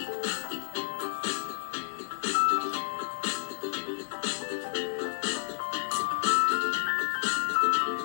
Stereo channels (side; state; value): right; silent; digital silence